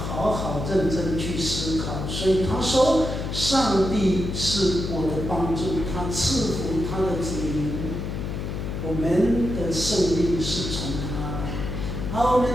好认真去思考。所以他说，上帝是我的帮助，他赐福他的子民，我们的胜利是从他来。好，我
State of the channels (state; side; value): noise; left; hum, 4 dB below the sound